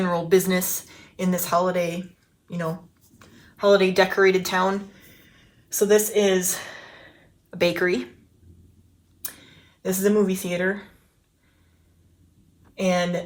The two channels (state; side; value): identical; both; correlation 1.00